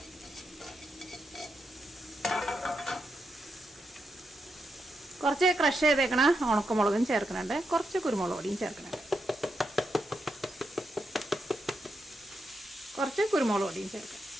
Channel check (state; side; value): normal; both; correlation 0.84